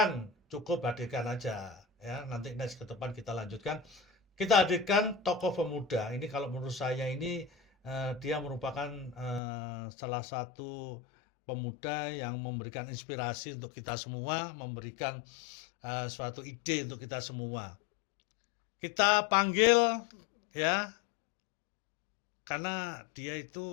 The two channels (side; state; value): right; drops out; at 9.4 s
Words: cukup hadirkan aja, ya, nanti next ke depan kita lanjutkan. Kita hadirkan tokoh pemuda, ini kalau menurut saya ini dia merupakan salah satu pemuda yang memberikan inspirasi untuk kita semua, memberikan suatu ide untuk kita semua. Kita panggil, ya, karena dia